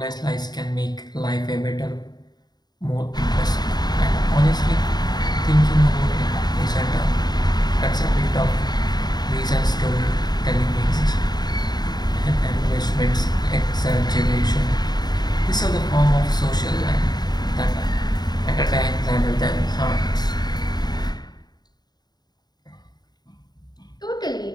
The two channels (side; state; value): right; late; 0.20 ms